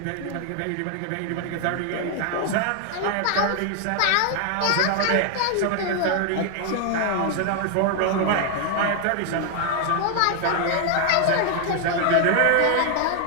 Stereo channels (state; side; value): different; both; correlation 0.00